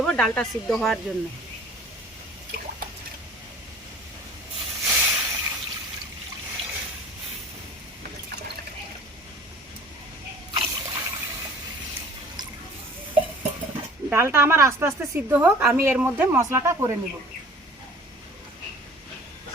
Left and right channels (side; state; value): both; normal; correlation 0.47